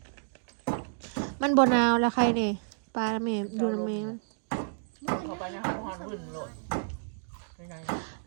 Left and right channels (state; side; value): silent; left; digital silence